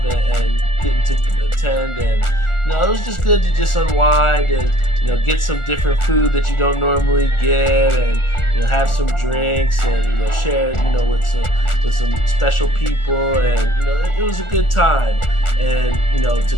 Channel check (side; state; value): right; late; 1.4 ms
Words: and getting to attend, and it was just good to just unwind and get some different food that you don't normally get, and have some drinks and share with some special people, and it was a good time. And to